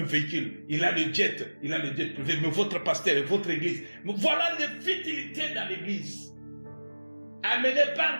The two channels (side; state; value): both; inverted; correlation -1.00